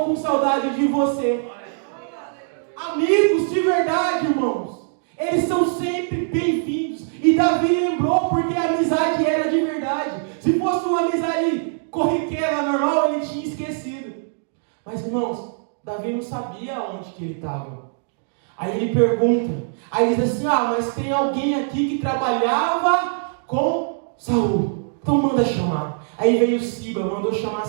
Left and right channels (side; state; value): left; silent; digital silence